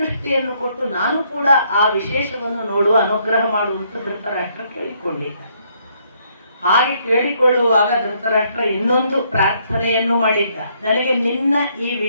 ಕೊಟ್ಟು ನಾನು ಕೂಡ ಆ ವಿಶೇಷವನ್ನು ನೋಡುವ ಅನುಗ್ರಹ ಮಾಡುವಂತ ಧೃತರಾಷ್ಟ್ರ ಕೇಳಿಕೊಂಡಿದ್ದ. ಹಾಗೆ ಕೇಳಿಕೊಳ್ಳುವಾಗ ಧೃತರಾಷ್ಟ್ರ ಇನ್ನೊಂದು ಪ್ರಾರ್ಥನೆಯನ್ನು ಮಾಡಿದ್ದ, ನನಗೆ ನಿನ್ನ ಈ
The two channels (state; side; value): inverted; both; correlation -0.70